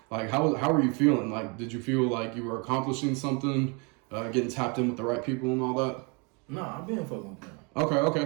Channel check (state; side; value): quieter; left; 32.4 dB